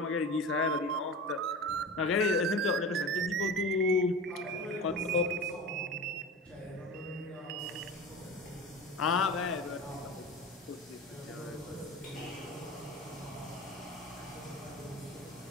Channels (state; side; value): normal; both; correlation 0.31